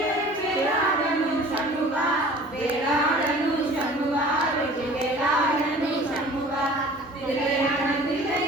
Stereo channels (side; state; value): both; normal; correlation 0.46